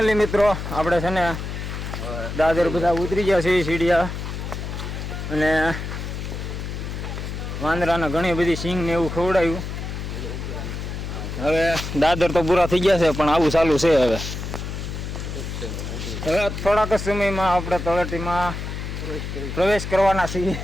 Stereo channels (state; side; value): noise; left; hum, 6 dB below the sound